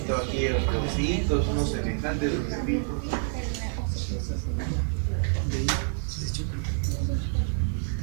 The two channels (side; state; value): left; silent; 57 dB below the other